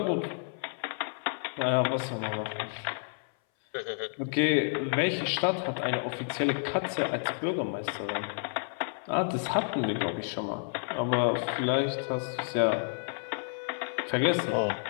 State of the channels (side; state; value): right; silent; 58 dB below the other